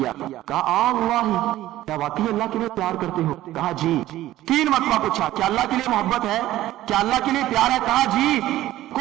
کہا اللہ کیا واقعی اللہ کے لیے پیار کرتے ہو کہا جی 3 مرتبہ پوچھا کیا اللہ کے لیے محبت ہے کیا اللہ کے لیے پیار ہے کہا جی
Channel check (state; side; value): quieter; left; 14.9 dB